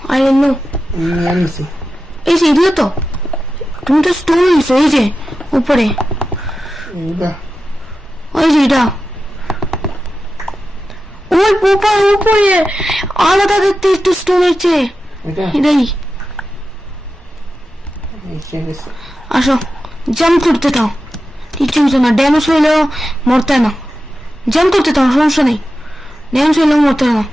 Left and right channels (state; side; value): normal; both; correlation 0.92